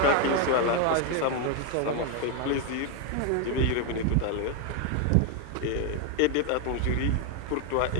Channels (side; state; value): both; different; correlation 0.01